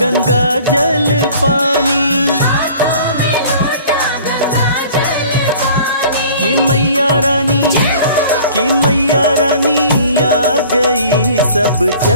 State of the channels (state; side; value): inverted; both; correlation -0.48